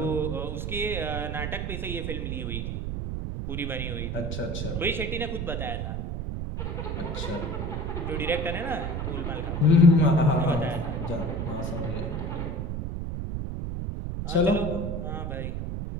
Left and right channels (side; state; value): right; noise; rumble, 3 dB below the sound